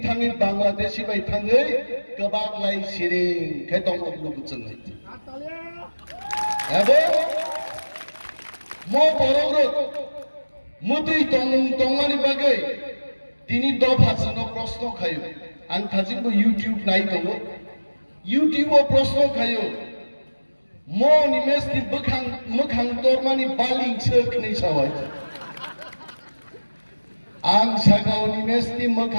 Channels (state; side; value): inverted; both; correlation -1.00